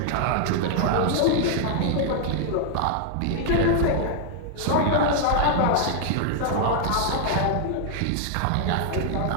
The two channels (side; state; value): both; different; correlation 0.00